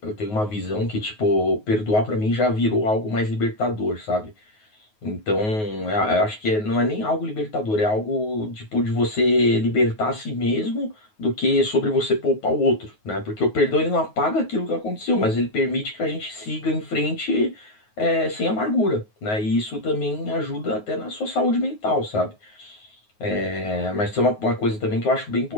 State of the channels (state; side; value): late; right; 9.4 ms